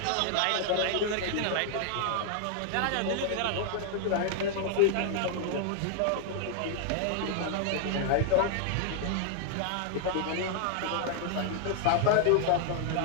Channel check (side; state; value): both; different; correlation 0.00